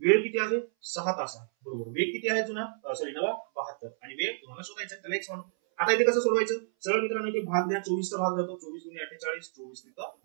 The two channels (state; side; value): silent; left; 58 dB below the other